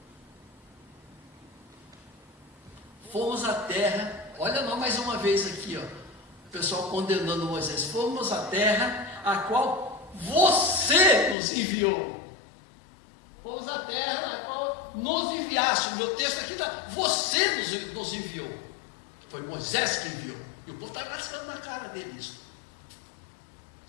Fomos à terra, olha não mais uma vez aqui, ó, o pessoal condenando Moisés. Fomos à terra a qual você nos enviou. Fomos à terra a qual nos enviaste. O meu texto aqui está: você nos enviou. Foi Moisés que enviou. E o povo está rascando na cara dele isso.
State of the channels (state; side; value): drops out; right; at 11.4 s